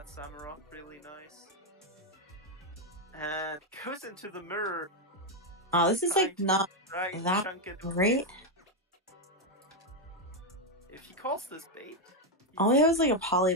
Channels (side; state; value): both; normal; correlation 0.03